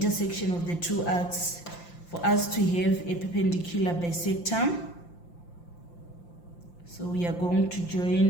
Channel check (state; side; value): late; right; 5.8 ms